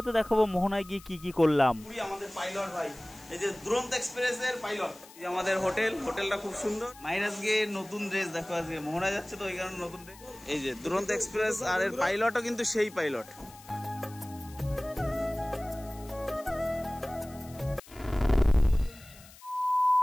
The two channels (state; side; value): noise; left; hiss, 21 dB below the sound